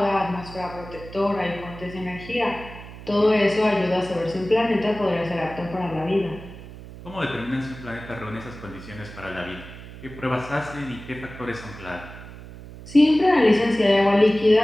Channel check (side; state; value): right; noise; hum, 15 dB below the sound